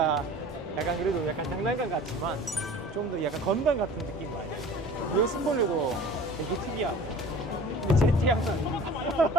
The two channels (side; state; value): both; normal; correlation 0.43